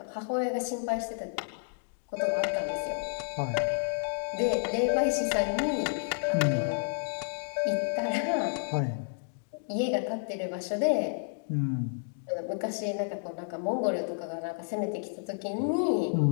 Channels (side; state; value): right; silent; digital silence